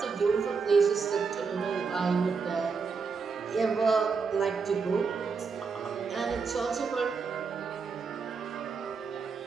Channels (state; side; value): quieter; left; 5.2 dB